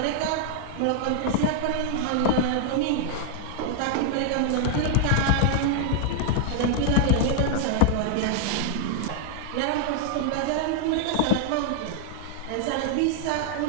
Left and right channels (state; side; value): different; both; correlation 0.00